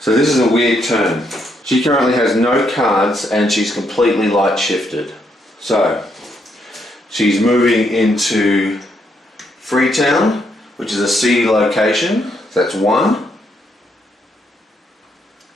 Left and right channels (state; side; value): normal; both; correlation 0.75